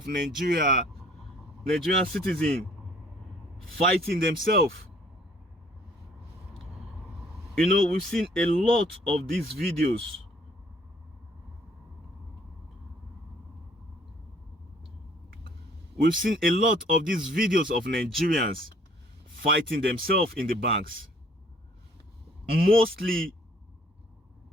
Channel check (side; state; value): both; normal; correlation 0.60